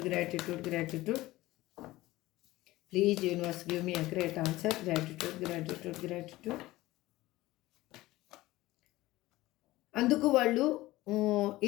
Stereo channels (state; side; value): quieter; right; 17.9 dB